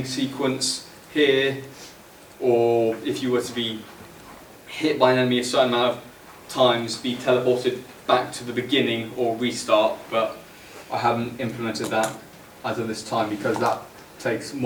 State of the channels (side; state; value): both; identical; correlation 1.00